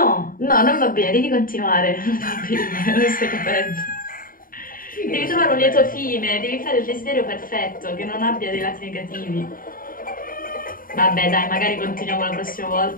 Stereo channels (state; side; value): late; right; 0.41 ms